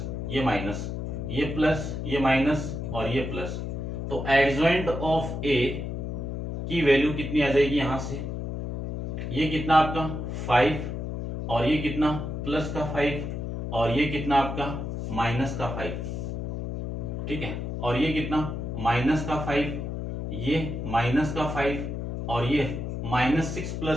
ये माइनस, ये प्लस, ये माइनस और ये प्लस। तो एडजॉइंट ऑफ ए की वैल्यू कितनी आ जाएगी यहां से, ये कितना आपका 5 और ये कितना प्लस का 5 और ये कितना आपका माइनस का 5। ठीक है, और ये कितना -5, ये -5 और ये -6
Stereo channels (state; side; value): noise; left; hum, 4 dB below the sound